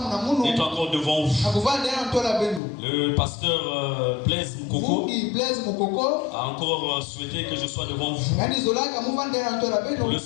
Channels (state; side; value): drops out; right; at 2.6 s